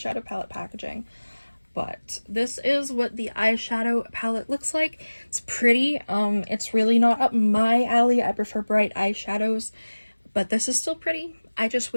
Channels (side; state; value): both; inverted; correlation -1.00